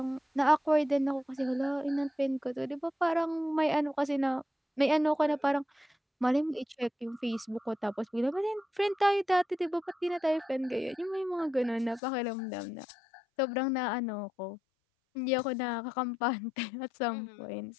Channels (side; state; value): right; drops out; at 12.0 s